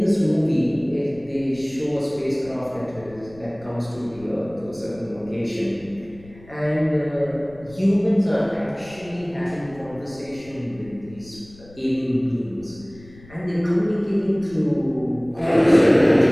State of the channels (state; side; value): noise; left; rumble, 22 dB below the sound